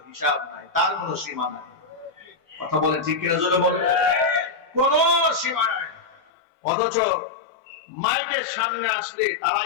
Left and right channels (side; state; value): right; drops out; at 6.2 s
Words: হিসাব নাই, তার কোনো সীমা নাই। কথা বলেন ঠিক কিনা জোরে বলেন? কোন সীমা নাই। অথচ মাইকের সামনে আসলে